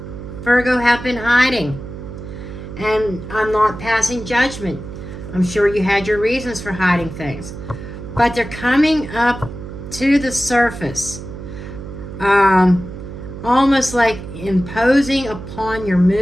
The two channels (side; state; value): right; noise; hum, 11 dB below the sound